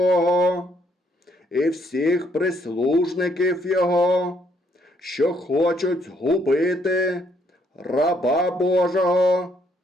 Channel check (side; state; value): both; normal; correlation 0.70